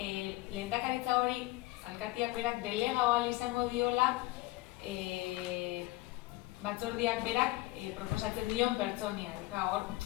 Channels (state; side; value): quieter; right; 19.5 dB